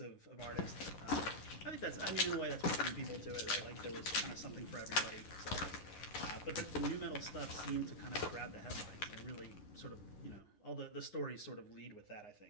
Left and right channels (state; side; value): late; right; 11 ms